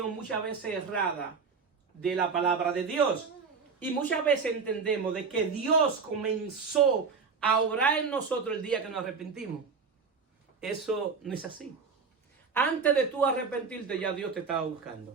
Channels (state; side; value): quieter; left; 5.3 dB